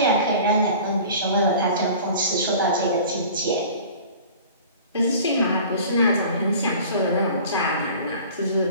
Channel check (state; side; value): inverted; both; correlation -0.43